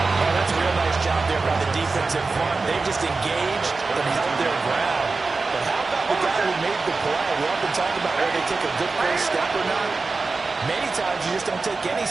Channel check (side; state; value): left; quieter; 3.9 dB